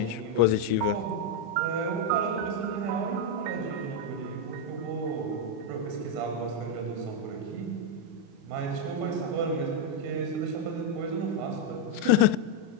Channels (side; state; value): left; late; 35 ms